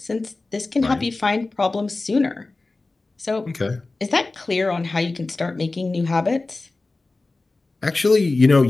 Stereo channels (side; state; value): right; quieter; 3.3 dB